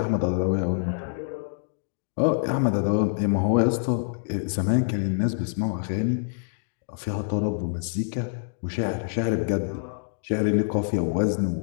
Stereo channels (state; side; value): silent; right; digital silence